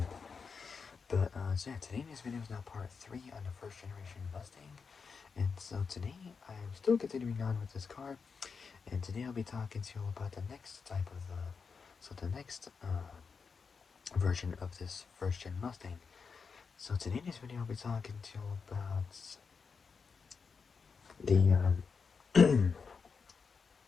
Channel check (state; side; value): quieter; right; 5.4 dB